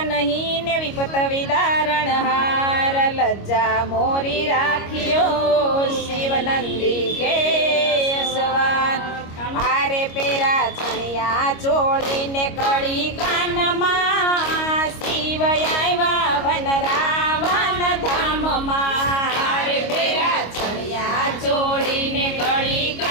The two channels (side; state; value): right; late; 25 ms